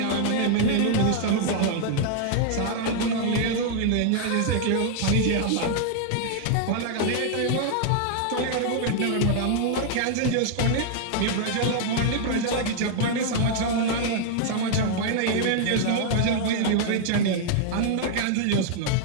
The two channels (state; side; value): different; both; correlation 0.00